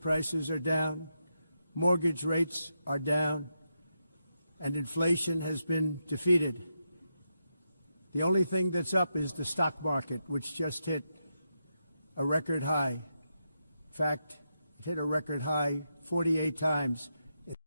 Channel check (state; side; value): inverted; both; correlation -0.84